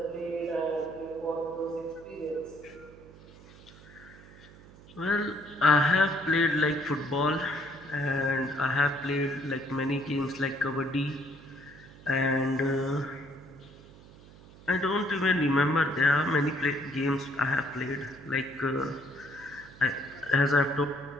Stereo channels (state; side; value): noise; right; hum, 21 dB below the sound